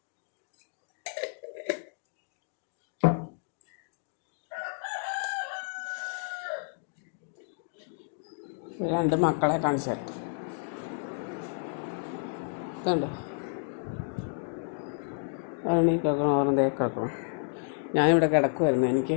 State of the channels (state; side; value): silent; right; digital silence